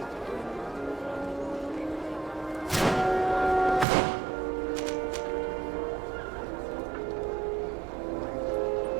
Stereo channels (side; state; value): left; drops out; at 3.9 s